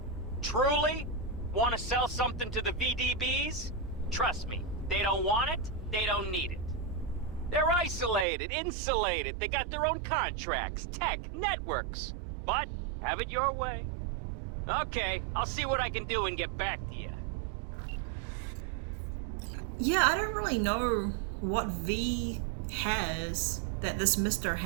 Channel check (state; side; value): drops out; left; at 8.2 s